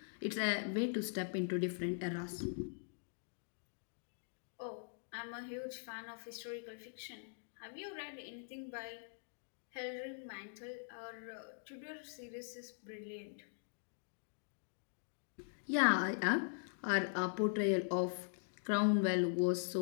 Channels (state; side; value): silent; right; digital silence